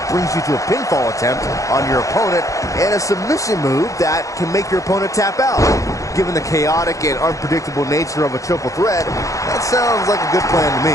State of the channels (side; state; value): right; late; 0.16 ms